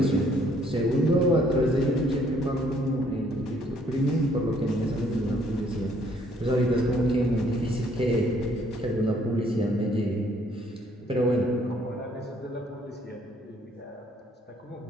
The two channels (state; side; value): normal; both; correlation 0.64